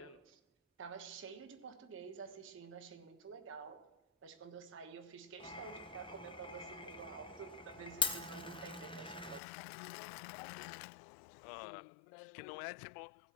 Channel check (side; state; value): right; drops out; at 9.4 s